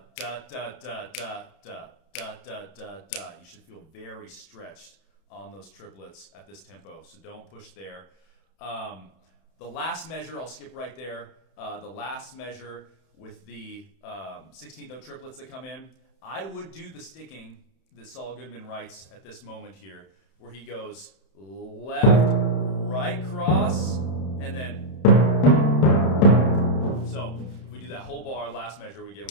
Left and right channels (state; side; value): late; right; 31 ms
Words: da, da, da, da, da, da, da, da, da. You should feel very stretched on those triplets at this tempo, so don't push there. The last measure, I'll skip right there. The last measure with the 16th note triplets that come in, I would do the sticking that Saul Goodman writes at this moment here, where he goes left, right cross, and then... So if we do that whole bar, last measure, we